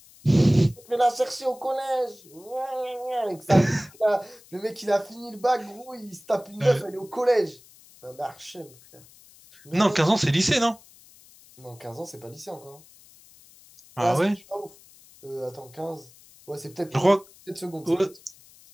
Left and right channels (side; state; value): left; noise; hiss, 24 dB below the sound